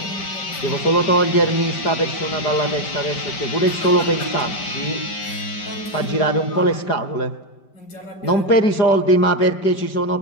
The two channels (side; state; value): right; late; 5.0 ms